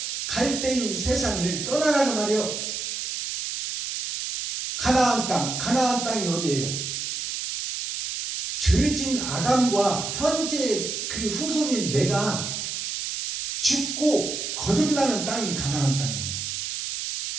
갈대인 세상을 떠나라 그 말이에요. 가나안 땅, 가나안 땅이 어디예요? 죄진 아담과 현재 그 후손인 내가 죽고 거듭나는 땅이 가나안 땅이에요.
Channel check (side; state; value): right; noise; hiss, 4 dB below the sound